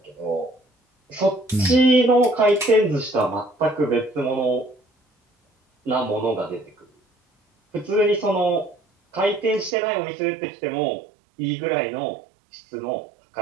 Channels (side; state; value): left; drops out; at 9.8 s